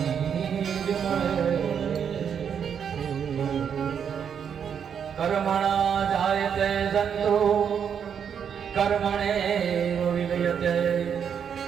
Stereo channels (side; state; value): left; quieter; 7.7 dB